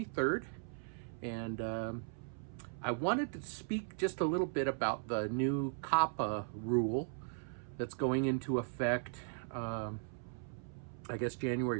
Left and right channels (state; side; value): silent; left; 53 dB below the other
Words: and I wanted to speak just a little bit about the new COPPA rule that's going into effect, I guess